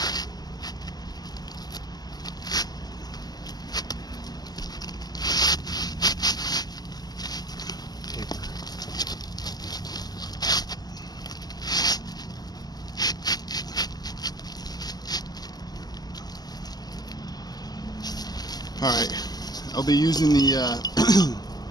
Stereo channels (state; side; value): late; right; 0.20 ms